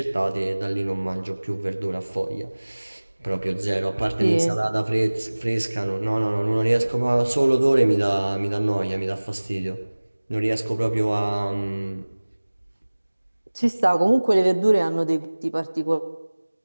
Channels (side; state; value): both; inverted; correlation -1.00